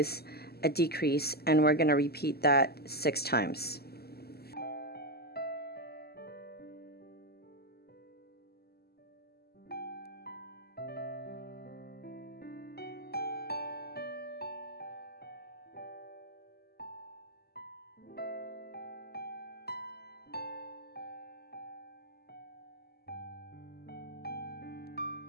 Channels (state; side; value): late; right; 0.46 ms